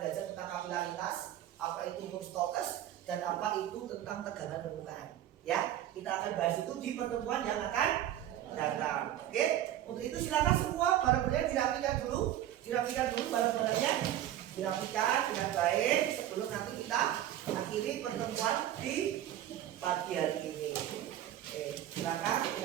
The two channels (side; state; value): left; quieter; 12.3 dB